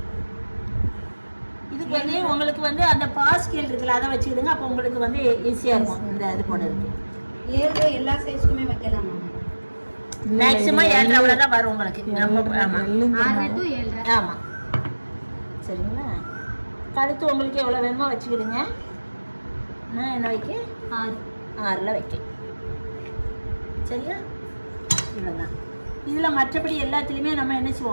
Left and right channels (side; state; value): both; inverted; correlation -1.00